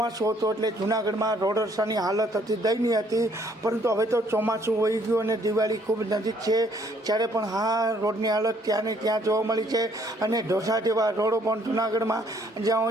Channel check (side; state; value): both; normal; correlation 0.64